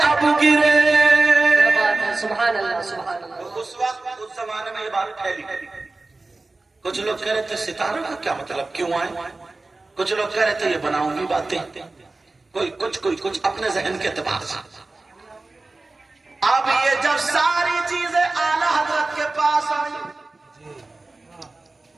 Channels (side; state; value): left; quieter; 3.3 dB